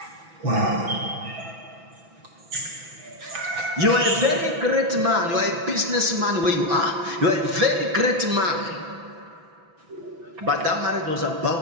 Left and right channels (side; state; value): left; late; 6.0 ms